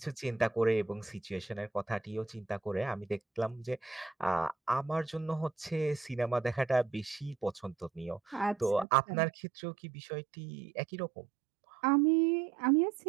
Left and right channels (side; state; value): left; drops out; at 8.8 s